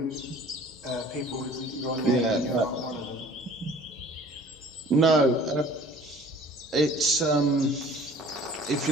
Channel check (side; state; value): both; normal; correlation 0.49